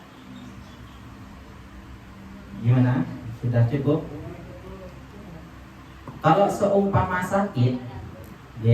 Gimana? Sudah cukup? Kalau seumpama sakit,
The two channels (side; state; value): both; identical; correlation 1.00